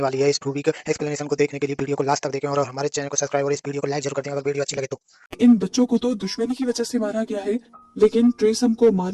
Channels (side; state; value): both; identical; correlation 1.00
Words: वाली है। इस मूवी के एक्सप्लेनेशन को देखने के लिए वीडियो को लास्ट तक देखें और हमारे चैनल को सब्सक्राइब और इस वीडियो को लाइक जरूर कर दें अगर वीडियो अच्छी लगे तो। इन बच्चों को तो दुश्मनी की वजह से मारा गया है लेकिन ट्रिसम को